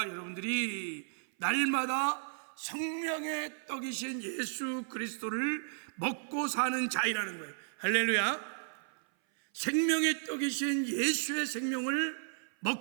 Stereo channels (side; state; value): left; silent; 55 dB below the other